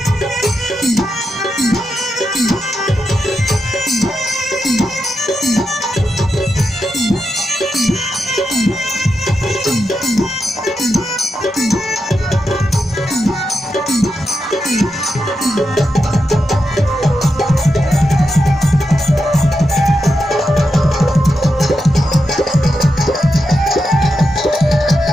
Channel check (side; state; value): both; normal; correlation 0.86